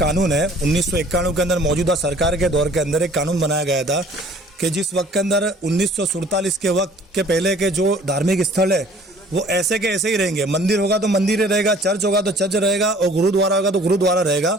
है 1991 के अंदर मौजूदा सरकार के दौर के अंदर एक कानून बनाया गया था कि जिस वक्त के अंदर 1947 के वक्त के पहले के जो धार्मिक स्थल है वो ऐसे के ऐसे ही रहेंगे। मंदिर होगा तो मंदिर ही रहेगा, चर्च होगा तो चर्च रहेगा और गुरुद्वारा होगा तो गुरुद्वारा रहेगा।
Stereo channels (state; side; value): normal; both; correlation 0.53